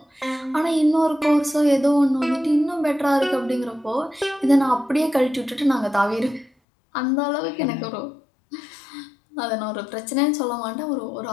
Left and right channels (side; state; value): right; drops out; at 6.5 s